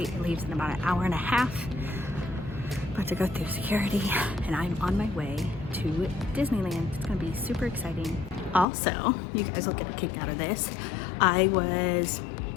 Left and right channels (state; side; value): drops out; right; at 8.7 s